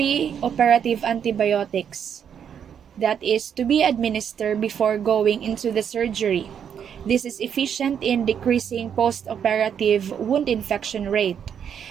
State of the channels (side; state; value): left; quieter; 8.1 dB